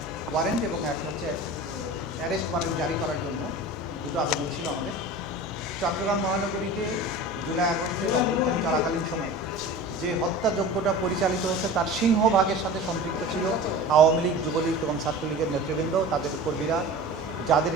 ওয়ারেন্ট এবং একটা হচ্ছে অ্যারেস্ট ওয়ারেন্ট জারি করার জন্য দুটো আবেদন ছিল আমাদের। চট্টগ্রাম মহানগরীতে জুলাই আগস্টের অভ্যুত্থান চলাকালীন সময়ে যে হত্যাযজ্ঞটা পরিচালিত হয়েছে তার সিংহভাগের সাথে সম্পৃক্ত ছিল আওয়ামী লীগ, যুবলীগ এবং ছাত্রলীগের নেতৃবৃন্দ, তাদের কর্মীরা,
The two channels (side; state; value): both; normal; correlation 0.36